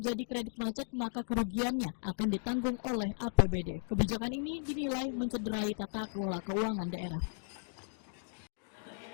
kredit macet maka kerugiannya akan ditanggung oleh APBD. Kebijakan ini dinilai mencederai tata kelola keuangan daerah.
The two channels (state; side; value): silent; right; digital silence